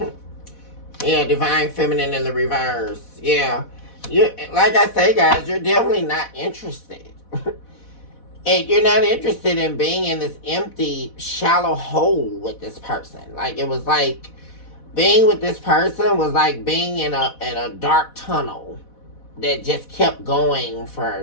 Yeah, divine feminine in the reverse. Yeah. You, like I say, guys, you're definitely not interested. And you're not interested in being in this empty, shallow hole with this person. Like, it was like being with this person was like being in a dark tunnel that just kept going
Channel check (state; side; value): late; right; 4.1 ms